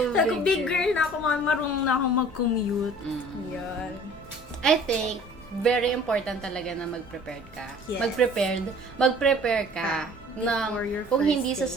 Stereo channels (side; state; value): both; normal; correlation 0.50